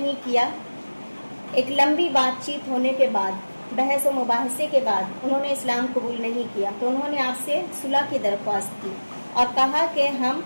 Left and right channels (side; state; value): both; inverted; correlation -1.00